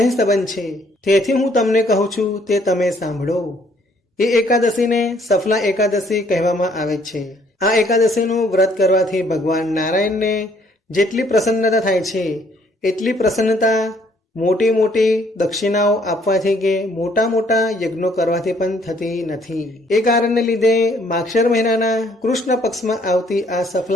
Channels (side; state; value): both; normal; correlation 0.64